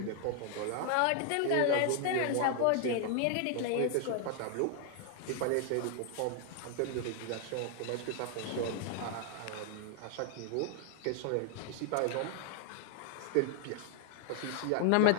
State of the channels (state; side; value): different; both; correlation 0.00